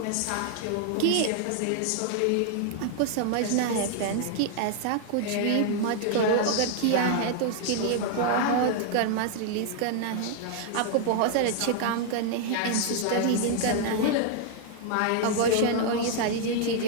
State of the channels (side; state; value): both; different; correlation 0.00